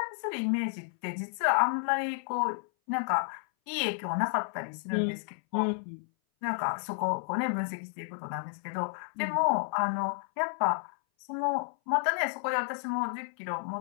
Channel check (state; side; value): silent; right; 57 dB below the other